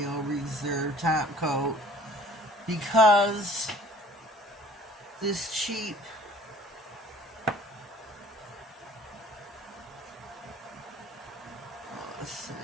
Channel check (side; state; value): both; normal; correlation 0.52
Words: Reserve top coat, because this cheap